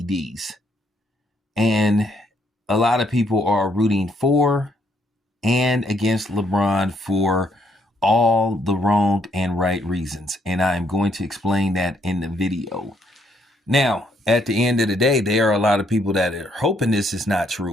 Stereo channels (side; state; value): both; normal; correlation 0.71